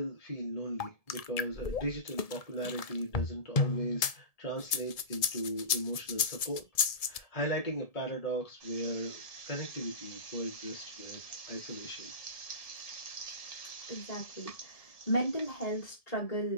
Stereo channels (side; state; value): right; late; 1.7 ms